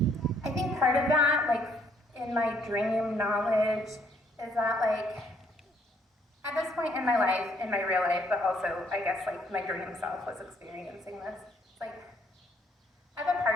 think part of that, like in my dream knowledge, is that like at this point in my life, in my real life, but also I guess like my dream self was experiencing this. It's like I have a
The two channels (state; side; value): normal; both; correlation 0.66